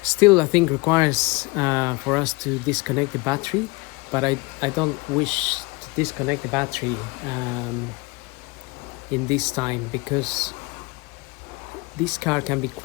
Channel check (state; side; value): quieter; right; 25.3 dB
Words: still I think requires for us to disconnect the battery, but I don't wish to disconnect the battery in this time, because this car can be